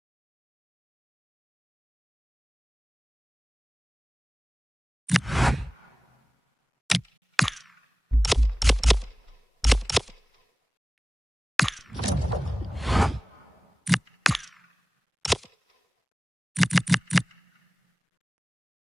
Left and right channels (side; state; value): both; normal; correlation 0.98